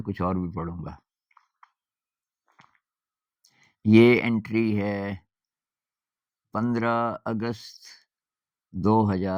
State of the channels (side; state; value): both; identical; correlation 1.00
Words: कुछ और भी पढ़ूँगा। ये एंट्री है 15 अगस्त